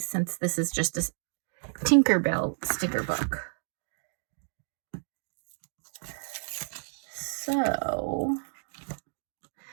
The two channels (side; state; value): left; silent; digital silence